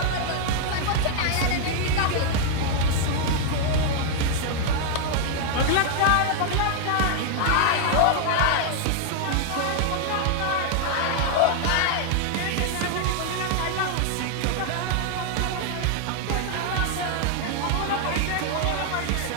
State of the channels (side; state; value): both; different; correlation 0.00